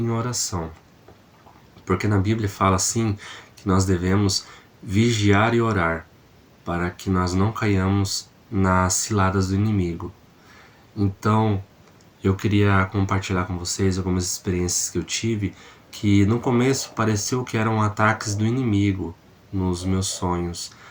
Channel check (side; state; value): both; identical; correlation 1.00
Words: oração. Porque na Bíblia fala assim que nós devemos vigiar e orar, para que nós não caiamos nas ciladas do inimigo. Então, eu queria compartilhar com vocês algumas experiências que eu tive, que no começo pareceu que eram ataques do inimigo nos meus sonhos,